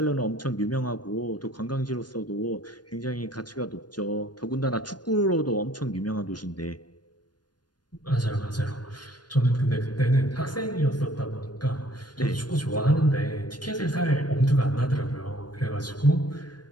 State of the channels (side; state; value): right; late; 0.70 ms